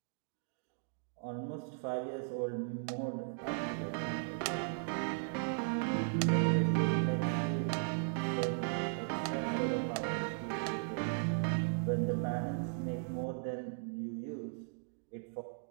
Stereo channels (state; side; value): silent; left; digital silence